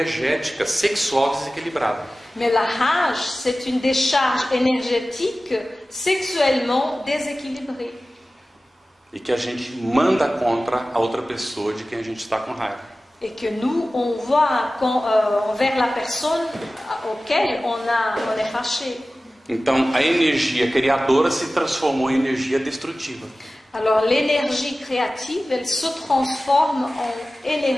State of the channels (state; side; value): normal; both; correlation 0.96